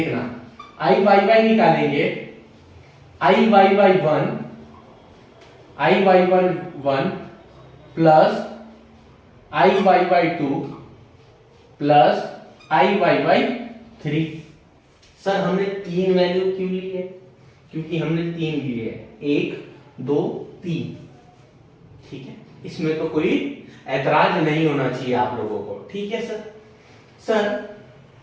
IYY निकालेंगे, IYY1 plus IYY2 plus IYY3। Sir हमने 3 वैल्यू क्यों ली है? क्योंकि हमने 3 लिए है, 1 2 3, ठीक है। इसमें तो कोई ऐतराज नहीं होना चाहिए आप लोगों को, ठीक है सर। सर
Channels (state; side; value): identical; both; correlation 1.00